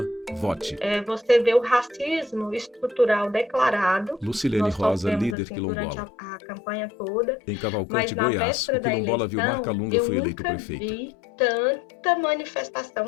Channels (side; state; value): right; drops out; at 5.4 s